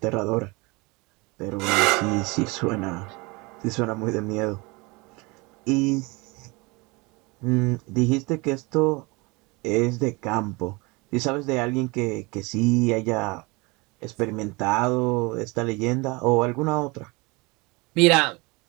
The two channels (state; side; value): quieter; left; 26.1 dB